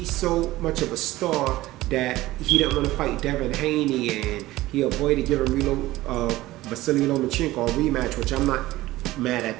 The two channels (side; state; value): left; quieter; 17.2 dB